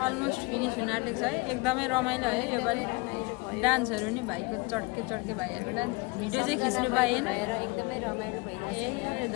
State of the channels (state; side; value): quieter; right; 26.8 dB